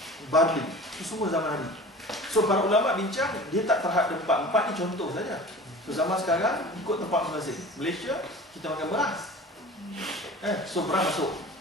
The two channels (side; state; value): both; normal; correlation 0.40